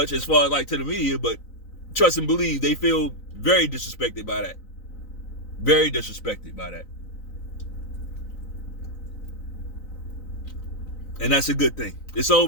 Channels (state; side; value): late; right; 3.9 ms